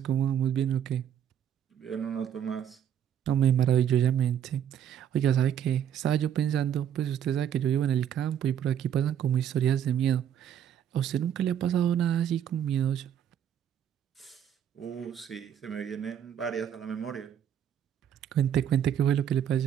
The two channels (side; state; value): left; quieter; 9.5 dB